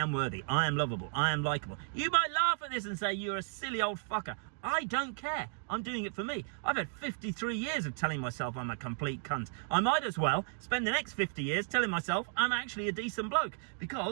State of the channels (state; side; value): silent; left; 55 dB below the other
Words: worthy, I am lovable, I am likable. You might laugh at this and say you're a silly old fucker. I don't care. I'm doing it for me. I've had 53 years of telling myself I'm a complete cunt. I might as well spend the next 50 years telling myself I'm actually a decent bloke,